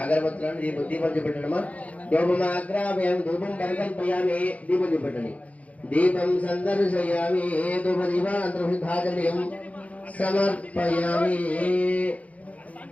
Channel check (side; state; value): right; late; 0.068 ms